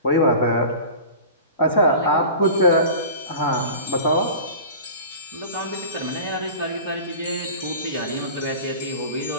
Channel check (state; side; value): inverted; both; correlation -0.37